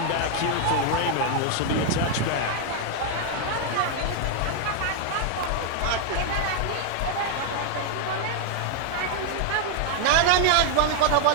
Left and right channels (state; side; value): different; both; correlation 0.00